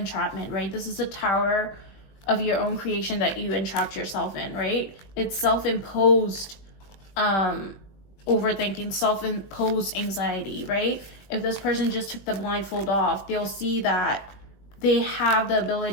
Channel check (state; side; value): late; right; 20 ms